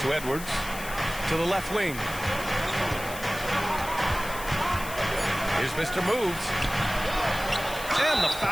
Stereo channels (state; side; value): noise; left; hiss, 12 dB below the sound